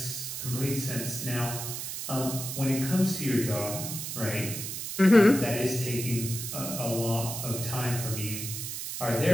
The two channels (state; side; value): noise; right; hiss, 5 dB below the sound